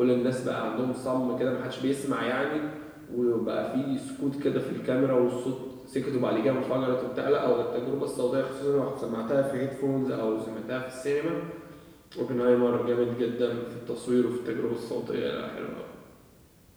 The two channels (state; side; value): identical; both; correlation 1.00